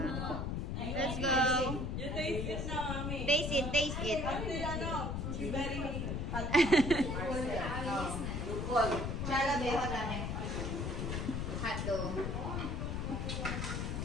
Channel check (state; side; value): noise; left; rumble, 2 dB below the sound